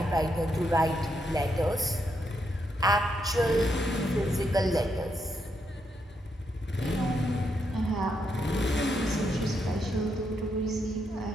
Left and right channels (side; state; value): both; normal; correlation 0.80